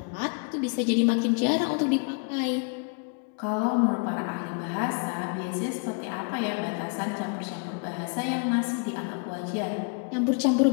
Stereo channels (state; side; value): quieter; right; 38.1 dB